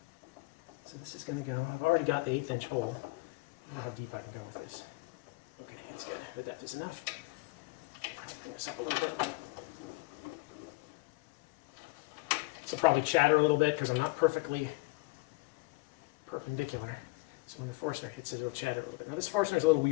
So this is going to go, I've already got the 1/8 inch hole. I don't know how deep I can go with this. Okay, that's good. The depth is enough. Bring this up a little bit. This will probably chatter a little bit because I'm not perfectly perpendicular. So when the Forstner hits it, it'll chatter a little bit. Now this Forstner is a little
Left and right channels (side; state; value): right; quieter; 24.7 dB